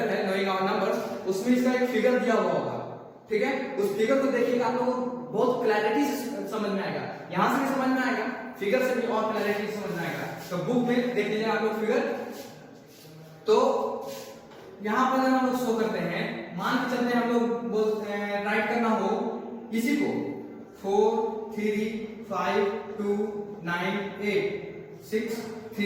है नोइंग आवर नंबर्स, उसमें इसका एक फिगर दिया हुआ होगा, ठीक है? उस फिगर को देखिएगा, आप लोगों को बहुत क्लैरिटी से समझ में आएगा, यहां से भी समझ में आएगा, फिगर से भी और क्लैरिटी से समझ में आएगा। तो बुक में देख लीजिए आप लोग फिगर। तो यहां पर हम लोग शो करते हैं, मान के चलते हैं हम लोग बोलते हैं राइट करना हो इसी को 4 3 5 2 9 8 6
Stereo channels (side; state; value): both; identical; correlation 1.00